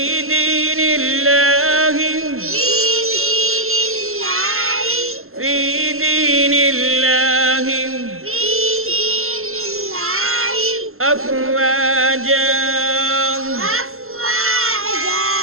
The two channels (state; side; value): late; left; 0.62 ms